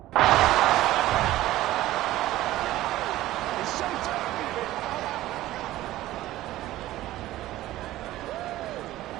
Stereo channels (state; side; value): quieter; left; 15.6 dB